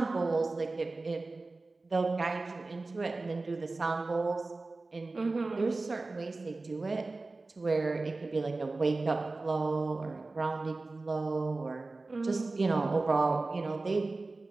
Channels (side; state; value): left; quieter; 3.4 dB